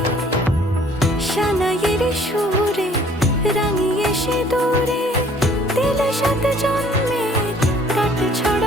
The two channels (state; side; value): normal; both; correlation 0.57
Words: সানাইয়ের সুরে রাঙিয়ে সিঁদুরে দিলে সাথে জন্মের কাট